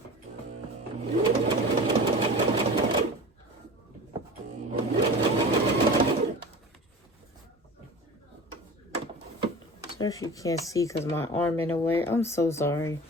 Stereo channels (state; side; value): normal; both; correlation 0.36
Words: Sorry if you can't see because my arm in the way. I'm so sorry.